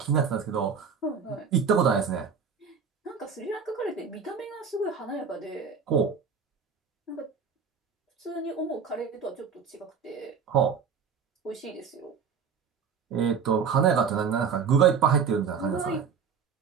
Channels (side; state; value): left; quieter; 6.3 dB